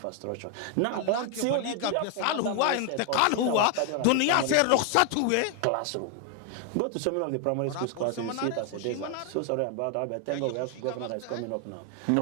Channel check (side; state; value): both; different; correlation 0.00